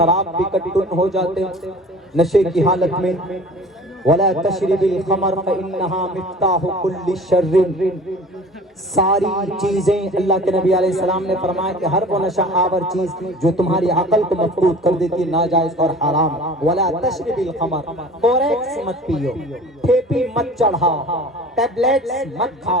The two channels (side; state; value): both; normal; correlation 0.43